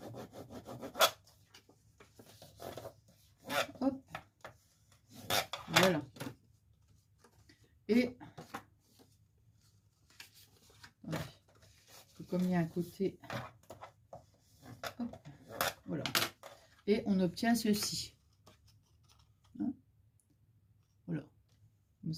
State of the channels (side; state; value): both; identical; correlation 1.00